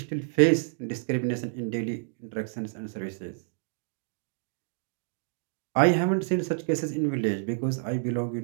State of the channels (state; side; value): silent; left; digital silence